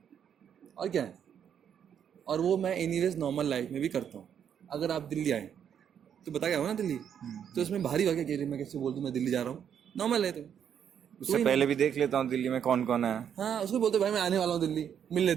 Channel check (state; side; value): quieter; left; 8.6 dB